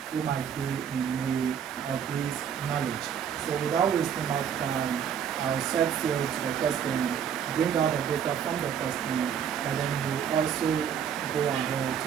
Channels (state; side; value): quieter; left; 8.2 dB